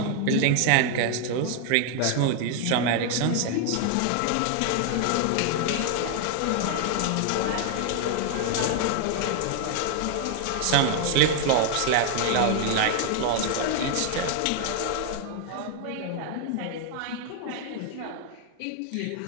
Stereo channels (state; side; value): different; both; correlation 0.00